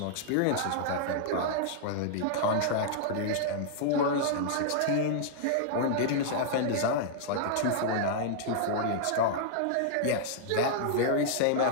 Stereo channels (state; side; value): different; both; correlation -0.01